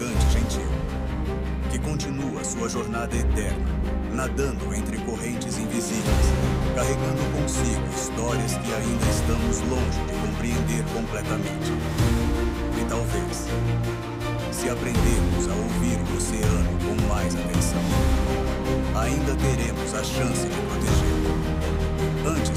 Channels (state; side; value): identical; both; correlation 1.00